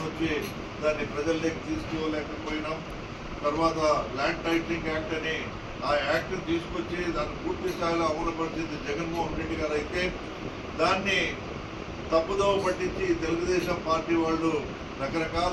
వచ్చి దాన్ని ప్రజల్లోకి తీసుకోలేకపోయినాం. తర్వాత ల్యాండ్ టైటిలింగ్ యాక్ట్ అని ఆ యాక్ట్ తీసుకొచ్చి దాన్ని పూర్తి స్థాయిలో అమలుపరిచింది జగన్మోహన్ రెడ్డి గారు అయితే దాన్ని తప్పుదోవ పట్టించి తెలుగుదేశం పార్టీ వాళ్ళు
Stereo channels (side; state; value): both; identical; correlation 1.00